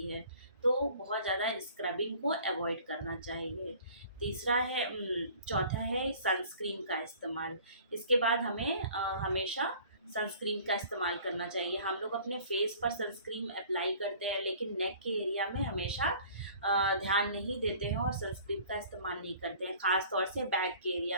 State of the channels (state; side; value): inverted; both; correlation -0.50